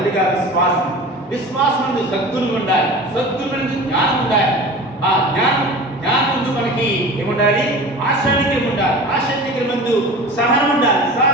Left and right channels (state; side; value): normal; both; correlation 0.37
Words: విశ్వాసం నందు సద్గుణం ఉండాలి, సద్గుణం నందు జ్ఞానం ఉండాలి, ఆ జ్ఞానం నందు మనకి ఏముండాలి, ఆశానికరం ఉండాలి, ఆశానికరం నందు సహనం ఉండాలి,